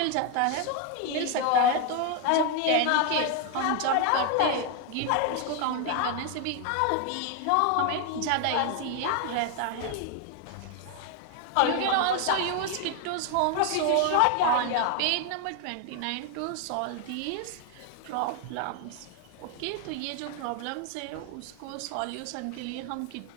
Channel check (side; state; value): both; different; correlation 0.01